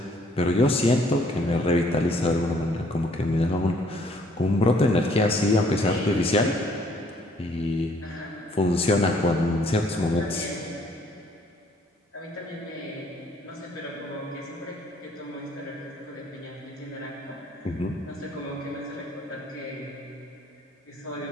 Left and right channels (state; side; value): normal; both; correlation 0.63